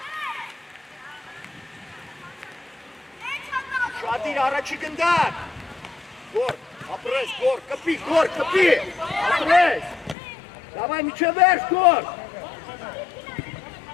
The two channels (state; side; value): drops out; right; at 10.2 s